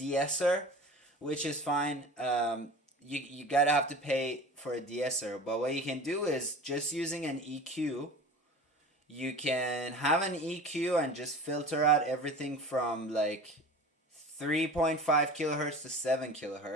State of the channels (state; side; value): normal; both; correlation 0.37